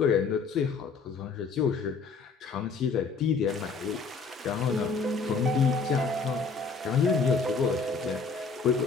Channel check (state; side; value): quieter; right; 4.7 dB